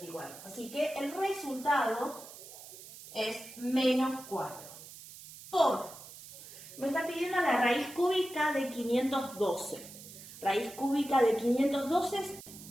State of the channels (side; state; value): right; noise; hiss, 16 dB below the sound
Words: Así que el resultado es menos 4. Me está pidiendo la raíz cúbica de 512. Raíz cúbica de 512